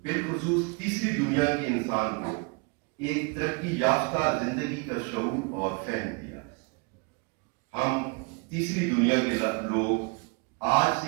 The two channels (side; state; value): left; quieter; 30.1 dB